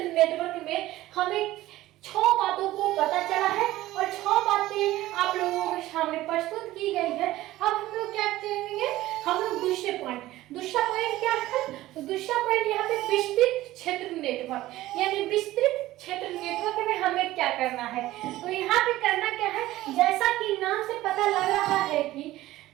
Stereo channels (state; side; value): quieter; left; 16.2 dB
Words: नेटवर्क में हमें 6 बातों को पता चला है और 6 बातें आप लोगों के सामने प्रस्तुत की गई है। अब हम लोग क्या करेंगे, हम लोग दूसरा पॉइंट क्या है, तो दूसरा पॉइंट यहाँ पे विस्तृत क्षेत्र नेटवर्क, यानी विस्तृत क्षेत्र नेटवर्क में हमें क्या करना है। तो यहाँ पे करना क्या है, जैसा कि नाम से पता लग रहा है कि